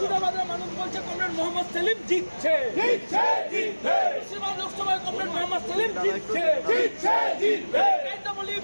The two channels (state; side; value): inverted; both; correlation -1.00